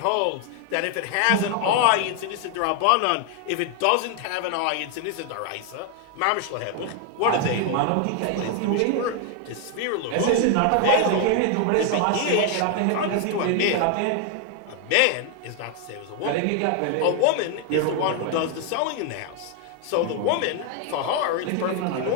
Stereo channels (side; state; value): both; different; correlation 0.01